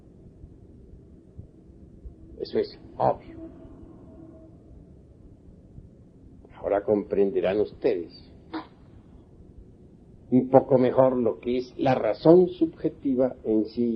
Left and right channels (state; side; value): identical; both; correlation 1.00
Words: Eso es obvio. Ahora comprenderán ustedes un poco mejor lo que es la razón subjetiva en sí